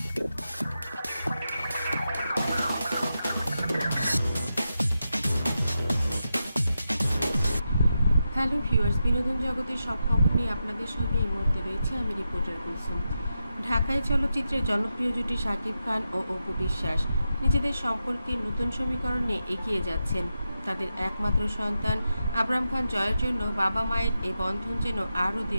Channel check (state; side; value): inverted; both; correlation -0.88